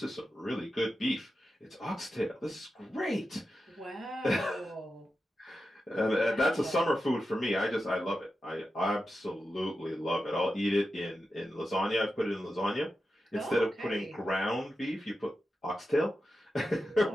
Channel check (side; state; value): both; normal; correlation 0.91